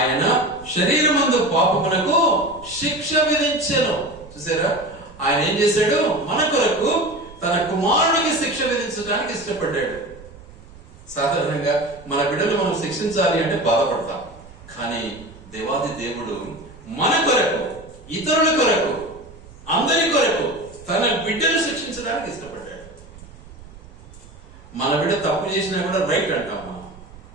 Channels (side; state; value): right; noise; rumble, 20 dB below the sound